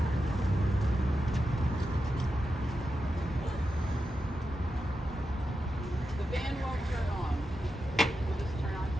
The van won't turn on. Will this turn on?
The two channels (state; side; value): normal; both; correlation 0.89